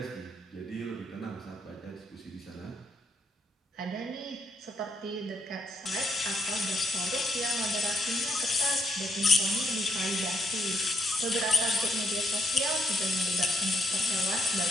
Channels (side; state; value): both; normal; correlation 0.76